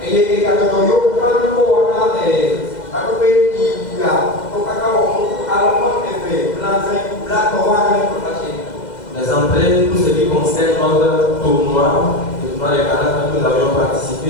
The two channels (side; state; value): right; late; 2.0 ms